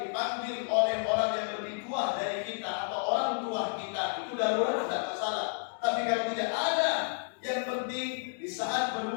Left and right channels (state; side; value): silent; right; digital silence